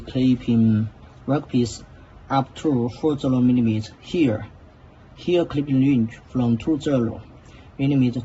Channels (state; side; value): identical; both; correlation 1.00